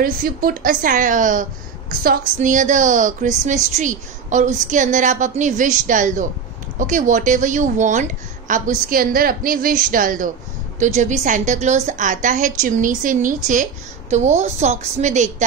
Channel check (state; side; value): quieter; left; 6.1 dB